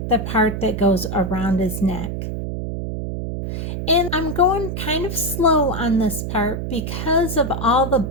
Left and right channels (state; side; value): noise; right; hum, 4 dB below the sound